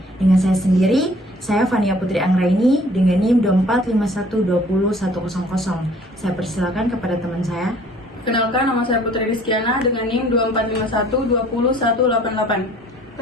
Dengan saya sendiri, saya Fania Putri Anggraini dengan NIM 24512010. Saya persilakan kepada teman saya. Kenalkan, nama saya Putri Rizkiana dengan NIM 2451201188.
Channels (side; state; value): both; normal; correlation 0.55